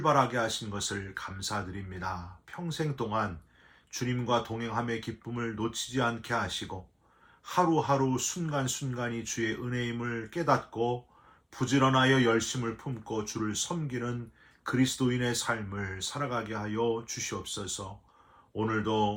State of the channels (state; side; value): identical; both; correlation 1.00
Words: 하신 것을 감사드립니다. 평생 동안 주님과 동행함의 기쁨을 놓치지 않게 하시고 하루하루 순간순간이 주의 은혜임을 깨닫고 부지런하여 열심을 품고 주를 섬기는 그리스도인의 삶을 살아가게 하여 주시옵소서.